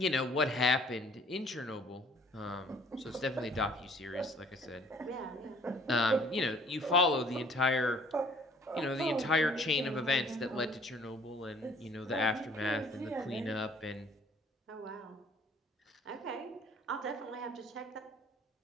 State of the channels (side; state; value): both; normal; correlation 0.56